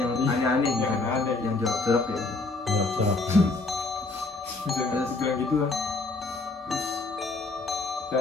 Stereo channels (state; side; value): quieter; right; 3.4 dB